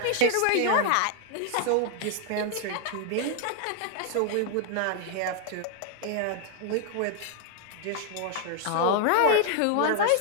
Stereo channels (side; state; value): both; different; correlation 0.00